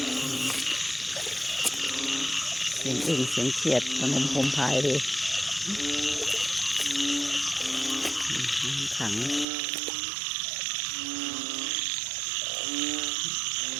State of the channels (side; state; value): left; drops out; at 9.5 s